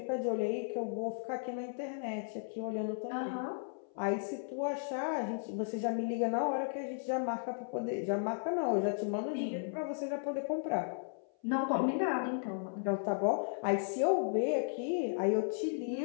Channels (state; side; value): silent; right; 54 dB below the other